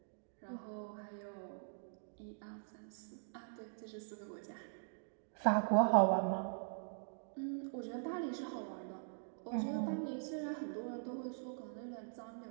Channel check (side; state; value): left; silent; digital silence